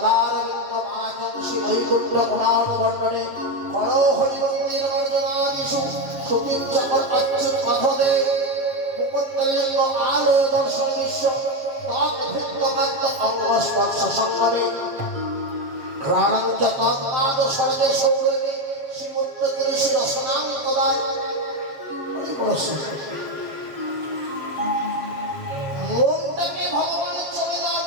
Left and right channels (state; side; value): late; left; 7.3 ms